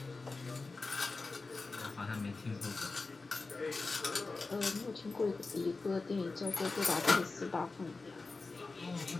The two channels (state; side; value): quieter; right; 3.8 dB